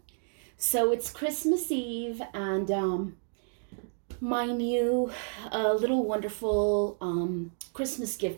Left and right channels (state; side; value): silent; left; 58 dB below the other